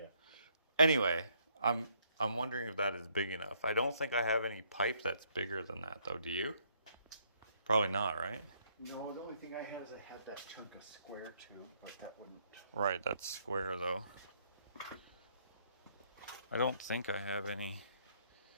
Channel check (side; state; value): both; inverted; correlation -0.69